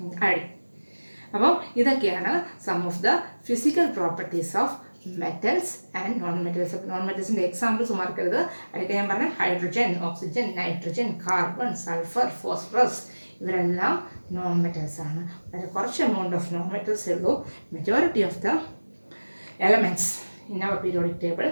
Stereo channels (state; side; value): inverted; both; correlation -1.00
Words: അയഡിൻ. അപ്പോൾ ഇതൊക്കെയാണ് some of the physical properties of metals and non metals. Non മെറ്റൽസിൻ്റെ എക്സാമ്പിൾസ് മറക്കരുത്. അതൊക്കെ ഞാൻ പറഞ്ഞ hydrogen, oxygen, nitrogen, carbon, sulphur, phosphorus, ഇവരെല്ലാം നോൺ മെറ്റൽസ് ആണ്. വളരെ കുറച്ച് എമൗണ്ട് ഓഫ് നോൺ മെറ്റൽസേ ഉള്ളൂ. Majority of the elements in our periodic table